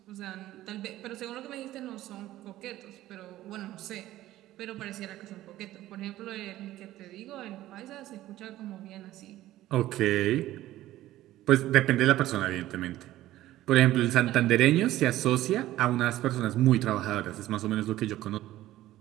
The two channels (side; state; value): left; quieter; 14.9 dB